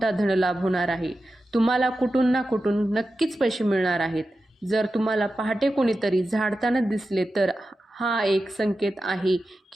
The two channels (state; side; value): normal; both; correlation 0.92